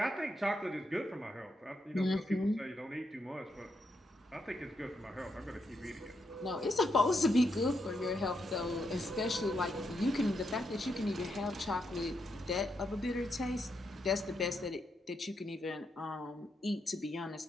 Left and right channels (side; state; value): both; normal; correlation 0.81